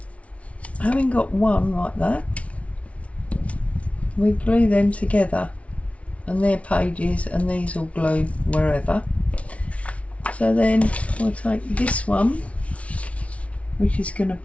having got one like that, we glue them together, and they're pages, and these will glue wherever. So then we'll take this one, which is going to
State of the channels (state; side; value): late; right; 0.064 ms